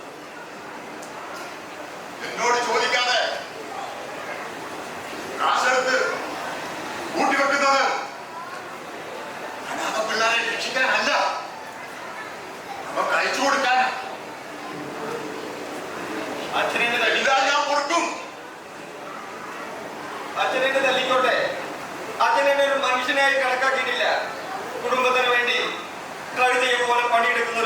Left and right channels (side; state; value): both; identical; correlation 1.00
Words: എന്നോട് ചോദിക്കാതെ കാശെടുത്ത് കൂട്ടിവെക്കുന്നത് അനാഥ പിള്ളേരെ രക്ഷിക്കാനല്ല, നമുക്ക് അയച്ചു കൊടുക്കാനാ. അച്ഛനെ എല്ലാം ഞാൻ കൊടുക്കും. അച്ഛനെ തല്ലിക്കോട്ടെ. അച്ഛനെ ഒരു മനുഷ്യനായി കണക്കാക്കിയിട്ടില്ല. കുടുംബത്തിന് വേണ്ടി കഴുതിയെ പോലെ പണിയെടുക്കുന്ന